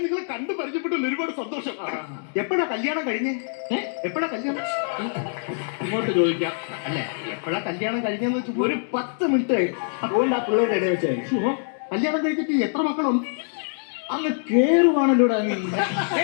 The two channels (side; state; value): right; silent; digital silence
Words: നിങ്ങളെ കണ്ടു പരിചയപ്പെട്ടതിൽ ഒരുപാട് സന്തോഷം. എപ്പോഴാ കല്യാണം കഴിഞ്ഞേ? എപ്പോഴാ കല്യാണം? ഇങ്ങോട്ട് ചോദിക്കാം. അല്ലെ, എപ്പോഴാ കല്യാണം കഴിഞ്ഞെന്ന് വെച്ചാൽ ഒരു 10 മിനിറ്റ് അതുകൊണ്ട് ആ പിള്ളേരുടെ ഇടയിൽ വെച്ചായിരുന്നു. കല്യാണം കഴിച്ചിട്ട് എത്ര മക്കളുണ്ട്? അങ്ങ് കേറുവാണല്ലോടാ നീ